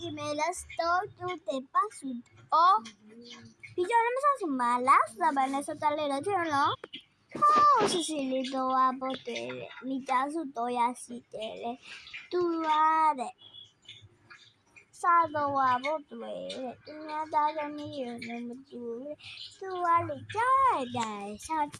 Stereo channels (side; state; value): both; identical; correlation 1.00